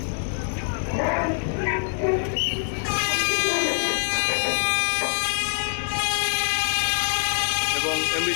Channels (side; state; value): right; silent; 62 dB below the other